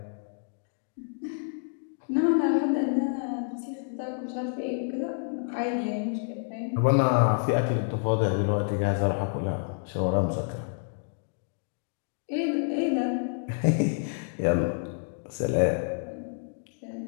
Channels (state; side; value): silent; right; digital silence